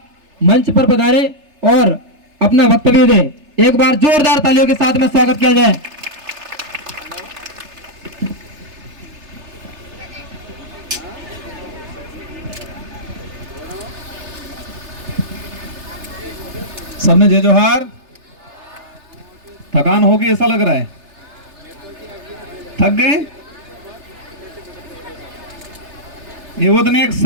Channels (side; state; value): left; late; 3.3 ms